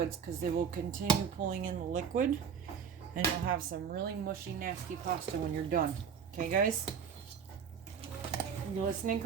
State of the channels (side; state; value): left; quieter; 7.2 dB